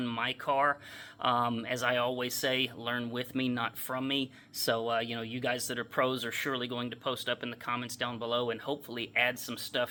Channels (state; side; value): identical; both; correlation 1.00